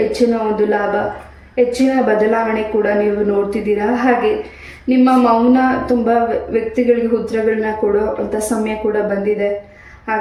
ಹೆಚ್ಚಿನ ಒಂದು ಲಾಭ, ಹೆಚ್ಚಿನ ಬದಲಾವಣೆ ಕೂಡ ನೀವು ನೋಡ್ತಿದ್ದೀರಾ. ಹಾಗೆ ನಿಮ್ಮ ಮೌನ ತುಂಬ ವ್ಯಕ್ತಿಗಳಿಗೆ ಉತ್ತರಗಳನ್ನ ಕೊಡೋ ಅಂಥ ಸಮಯ ಕೂಡ ಬಂದಿದೆ.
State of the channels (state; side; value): identical; both; correlation 1.00